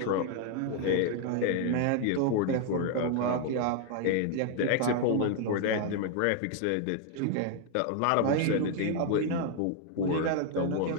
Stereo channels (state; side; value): different; both; correlation 0.00